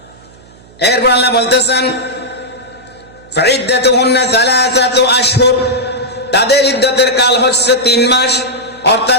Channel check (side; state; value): right; noise; hum, 25 dB below the sound